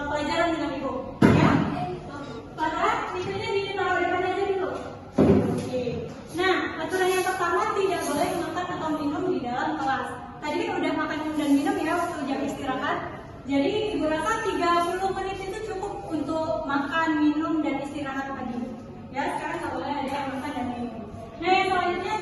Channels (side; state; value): both; identical; correlation 1.00